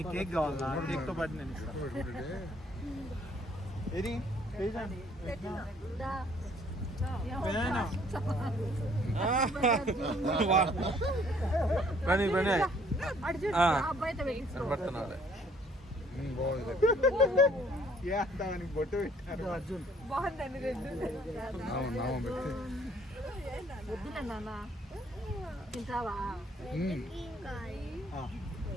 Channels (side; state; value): both; normal; correlation 0.61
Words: కేక్ కావాలా? కేక్ తో పాటు నేను ఇస్తాను. ఏది పని పని కనపడుతున్నాడు. బాగుంది బొట్టు పెట్టారు. బాగుందండి తింటావా?